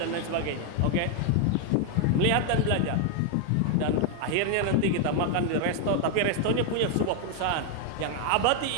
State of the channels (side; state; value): both; different; correlation 0.01